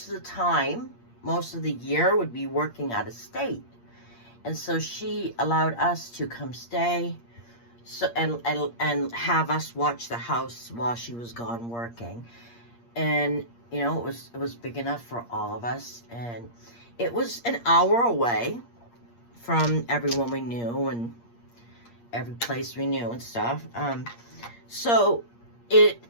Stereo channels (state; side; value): late; right; 8.5 ms